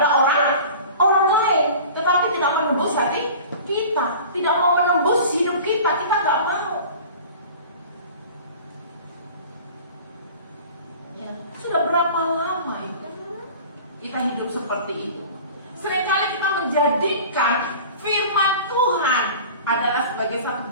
orang lain, tetapi tidak menembus hati kita, tidak mau menembus hidup kita nggak mau. Sudah berapa lama itu kita hidup seperti itu? Seringkali kita menjadikan firman Tuhan adalah sebagai satu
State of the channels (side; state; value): both; inverted; correlation -0.41